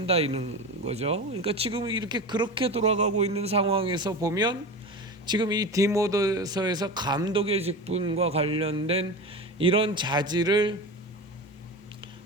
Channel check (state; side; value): normal; both; correlation 0.27